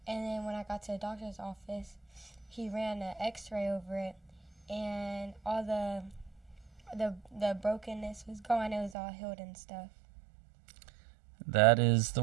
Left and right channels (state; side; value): drops out; left; at 9.0 s